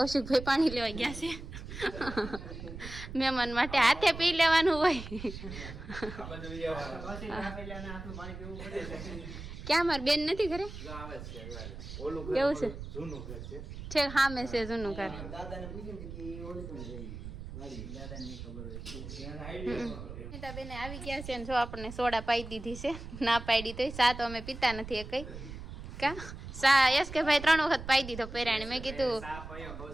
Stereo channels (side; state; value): right; noise; rumble, 10 dB below the sound